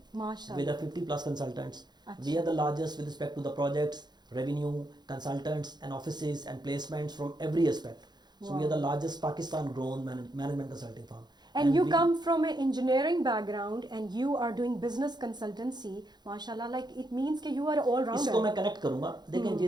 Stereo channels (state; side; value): late; left; 0.21 ms